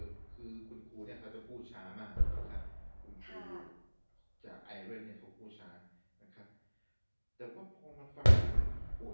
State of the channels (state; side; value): inverted; both; correlation -1.00